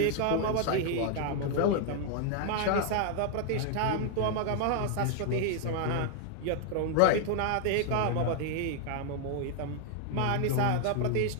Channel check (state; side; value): different; both; correlation 0.00